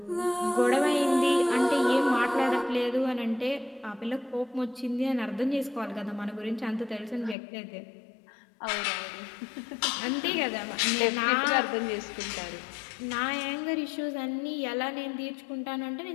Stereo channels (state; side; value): drops out; right; at 7.4 s